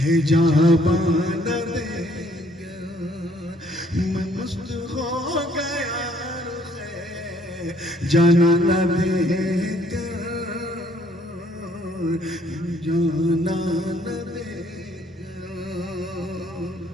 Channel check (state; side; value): normal; both; correlation 0.64